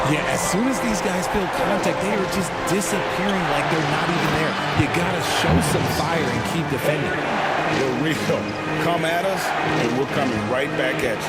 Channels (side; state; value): both; identical; correlation 1.00